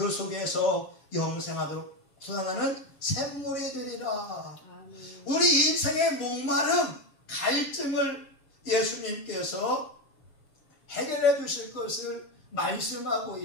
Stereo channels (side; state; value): right; late; 7.2 ms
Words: 속에서 영생하도록 솟아나는 샘물이 되리라. 아멘. 우리 인생의 목마름, 갈증을 예수님께서 해결해 주실 것을 말씀하고